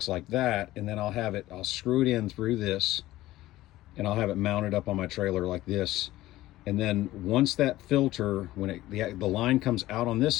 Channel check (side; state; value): right; quieter; 16.2 dB